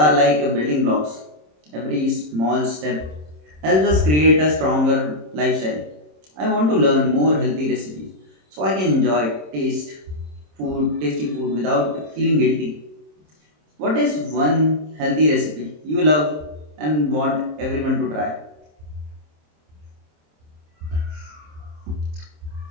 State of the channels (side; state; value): left; late; 26 ms